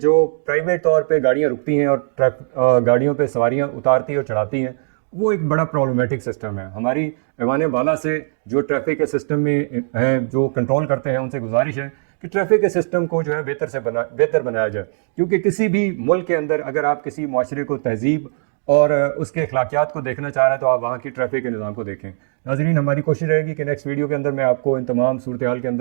پرائیویٹ طور پہ گاڑیاں رکتی ہیں اور گاڑیوں پہ سواریاں اتارتی اور چڑھاتی ہیں، وہ ایک بڑا پرابلمیٹک سسٹم ہے۔ ہماری ایوان بالا سے جو ٹریفک کے سسٹم میں ہیں جو کنٹرول کرتے ہیں ان سے گزارش ہے کہ ٹریفک کے سسٹم کو جو ہے بہتر بنایا جائے، کیونکہ کسی بھی ملک کے اندر اگر آپ کسی معاشرے کو تہذیب اور اس کے اخلاقیات کو دیکھنا چاہ رہے ہیں تو آپ وہاں کی ٹریفک کے نظام کو دیکھیں۔ ناظرین، ہماری کوشش رہے گی کہ نیکسٹ ویڈیو کے اندر میں آپ کو ان تمام صورتحال کے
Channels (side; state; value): left; silent; digital silence